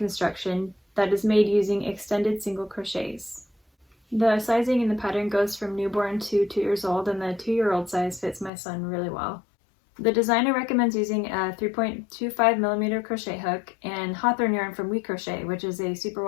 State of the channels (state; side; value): drops out; right; at 8.5 s